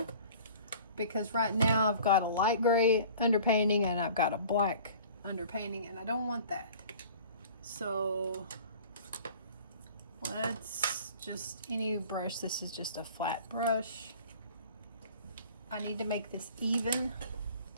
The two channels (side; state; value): both; inverted; correlation -0.45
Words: because right now I've got a light gray underpainting and I've got a black underpainting, and I don't want that. So let's just any brush. This is just a flat brush. I need to make this even.